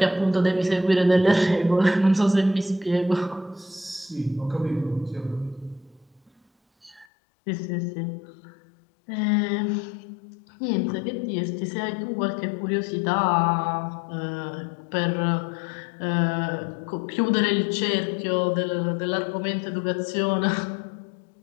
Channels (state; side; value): drops out; right; at 7.1 s